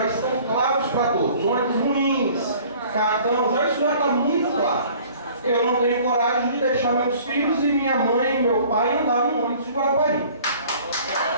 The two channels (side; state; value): both; inverted; correlation -0.51